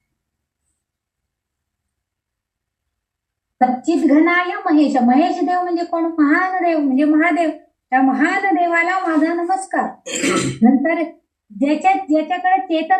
सच्चिद्घनाय महेश. महेश देव म्हणजे कोण, महान देव म्हणजे महादेव. त्या महान देवाला माझा नमस्कार. नंतर ज्याच्याकडे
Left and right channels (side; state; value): both; identical; correlation 1.00